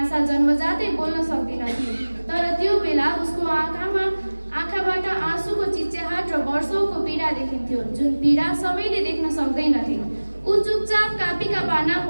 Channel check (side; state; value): both; inverted; correlation -1.00